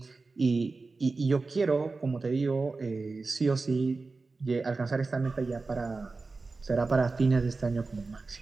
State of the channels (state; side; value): quieter; left; 3.9 dB